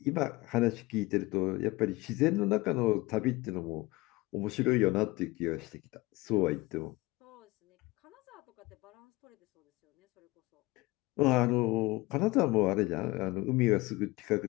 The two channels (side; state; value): right; quieter; 21.3 dB